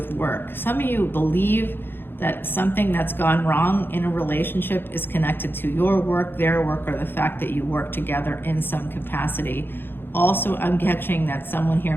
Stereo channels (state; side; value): late; right; 0.10 ms